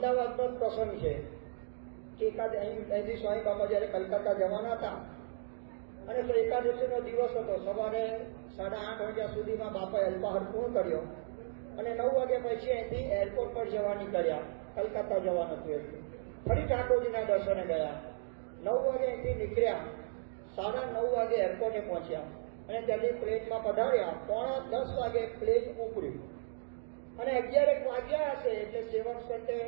જ પ્રસંગ છે કે અહીંથી સ્વામી બાપા જયારે કલકત્તા જવાના હતા અને એકાદશીનો દિવસ હતો. સવારે 8:30 વાગ્યા સુધીમાં બાપાએ અલ્પાહાર પૂર્ણ કર્યો અને 9 વાગ્યા પછી અહીંથી એરપોર્ટ પર જવા નીકળ્યા. કલકત્તા જવાનું હતું એટલે ફરી ઠાકોરજીના દર્શને ગયા. 9 વાગે અહીંથી નીકળ્યા, 9:30 વાગે એરપોર્ટે પહોંચ્યા અને ત્યાંથી પ્લેનમાં પધાર્યા. 9:45 વાગે પ્લેન ઉપડ્યું અને 11 વાગ્યા હશે એટલે સેવક સંતે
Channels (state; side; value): silent; left; digital silence